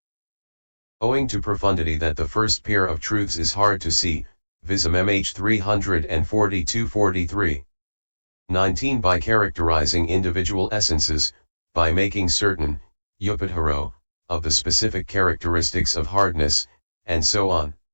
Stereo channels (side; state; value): both; inverted; correlation -1.00